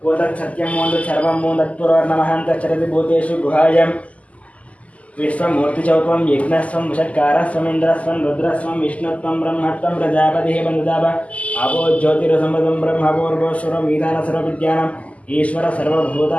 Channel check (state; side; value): late; right; 0.068 ms